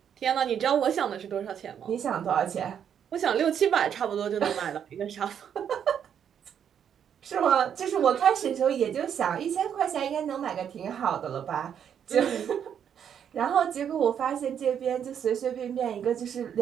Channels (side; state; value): left; quieter; 8.5 dB